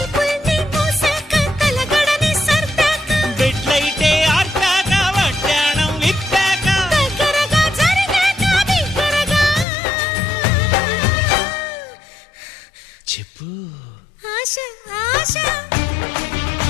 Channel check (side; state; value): right; drops out; at 9.7 s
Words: బెడ్లైతే ఆర్పాక వడ్డాణం విప్పాక చెప్పు ఆశ ఆశ